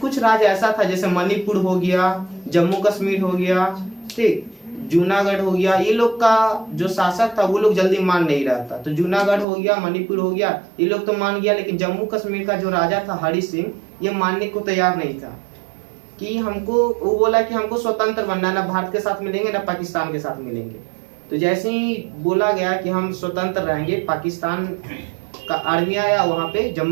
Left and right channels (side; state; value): left; drops out; at 9.5 s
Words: राज्य ऐसा था जैसे मणिपुर हो गया, जम्मू कश्मीर हो गया, ठीक, जूनागढ़ हो गया, ये लोग का जो शासक था वो लोग जल्दी मान नहीं रहा था। तो जूनागढ़ हो गया, मणिपुर हो गया, ये लोग तो मान गया, लेकिन जम्मू कश्मीर का जो राजा था हरि सिंह, ये मानने को तैयार नहीं था कि हमको, वो बोला कि हमको स्वतंत्र बनना है, ना भारत के साथ मिलेंगे ना पाकिस्तान के साथ मिलेंगे। तो जैसे ही बोला गया कि हम स्वतंत्र रहेंगे, पाकिस्तान का आर्मी आया, वहां पे